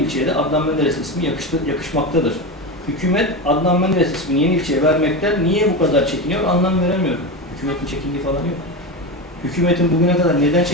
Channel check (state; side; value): normal; both; correlation 0.19